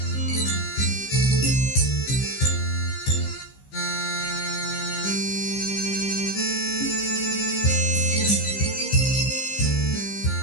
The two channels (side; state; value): right; late; 15 ms